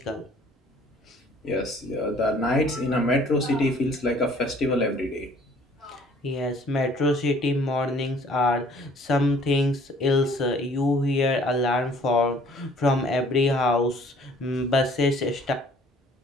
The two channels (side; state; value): both; normal; correlation 0.56